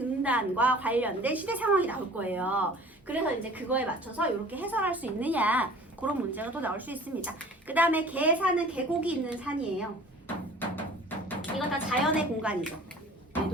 관련된 시대 상황이 나올 거예요. 그래서 이제 그거에 맞춰서 이렇게 해설할 수 있느냐 그런 문제가 또 나올 수 있습니다. 그 다음에 계산은 계곡이 있는 산이에요. 이건 다 자연의 공간이죠.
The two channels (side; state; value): both; normal; correlation 0.46